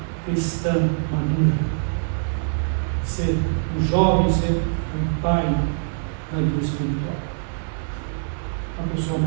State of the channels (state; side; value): silent; left; digital silence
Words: cristã madura. Ser um jovem, ser um pai na vida espiritual, uma pessoa